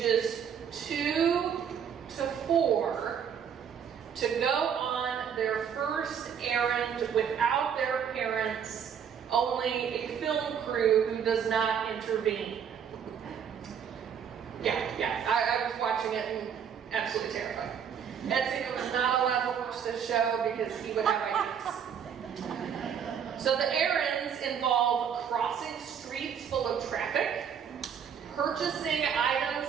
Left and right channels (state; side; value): quieter; left; 7.9 dB